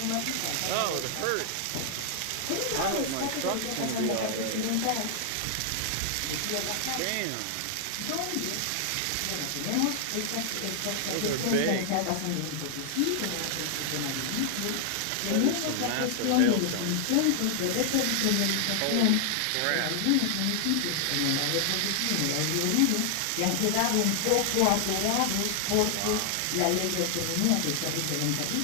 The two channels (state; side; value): different; both; correlation 0.00